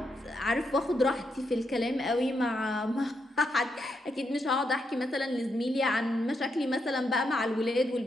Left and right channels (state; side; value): normal; both; correlation 0.81